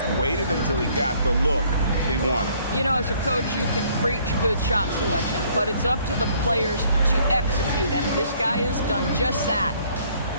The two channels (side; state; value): both; inverted; correlation -0.62